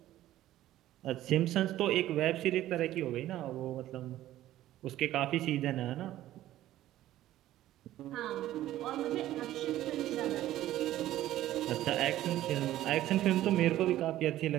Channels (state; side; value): quieter; left; 14.0 dB